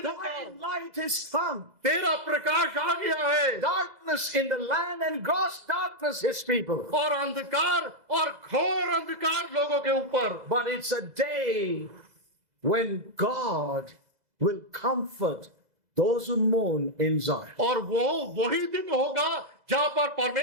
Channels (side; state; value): left; late; 2.0 ms